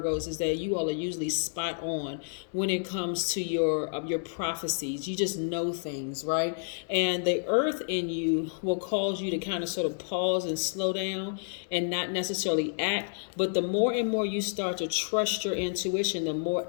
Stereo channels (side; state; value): right; silent; digital silence